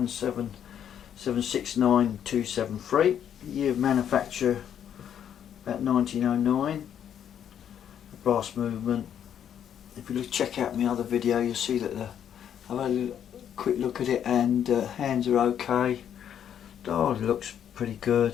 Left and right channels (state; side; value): quieter; right; 9.3 dB